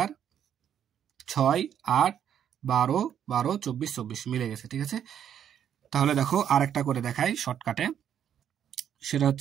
6 8 12 12 24 24 মিলে গেছে, ঠিক আছে। তাহলে দেখো আরেকটা করে দেখাই শর্টকাটে, সেটা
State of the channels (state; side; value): quieter; left; 9.3 dB